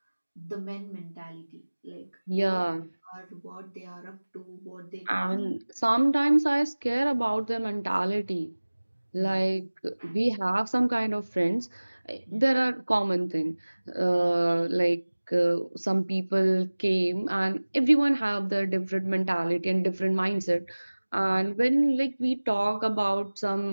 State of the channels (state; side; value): inverted; both; correlation -1.00